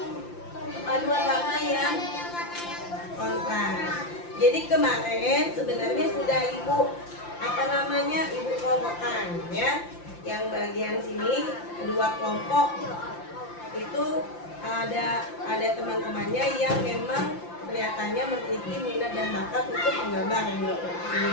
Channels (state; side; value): late; right; 5.8 ms